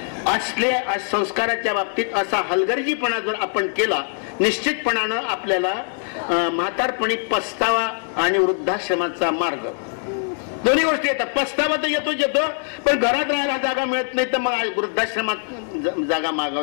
असल्या संस्काराच्या बाबतीत असा हलगर्जीपणा जर आपण केला, निश्चितपणानं आपल्याला म्हातारपणी पस्तावा आणि वृद्धाश्रमाचा मार्ग दोन्ही गोष्टी येतात. पस्तावा तर येतो, पण घरात राहायला जागा मिळत नाही, तर मग वृद्धाश्रमात जागा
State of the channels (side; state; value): right; silent; 63 dB below the other